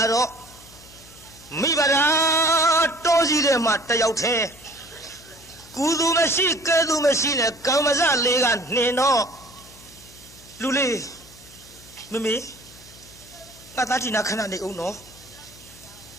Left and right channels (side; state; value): left; noise; hum, 23 dB below the sound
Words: တော့မိဘရာတောကြီးတဲ့မှာတယောက်တည်းကုသူမရှိကဲသူမရှိနဲ့ကံမစလေးကနှင်တော့လူလေးမမေငါသားတီနာခဏနေအောင်နော်